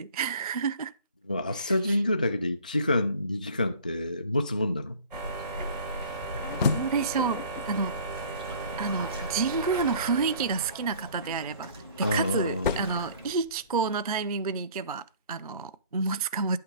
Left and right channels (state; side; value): inverted; both; correlation -0.49